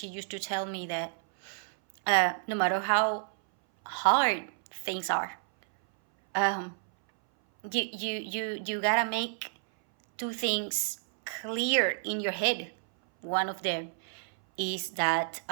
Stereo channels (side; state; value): left; silent; 58 dB below the other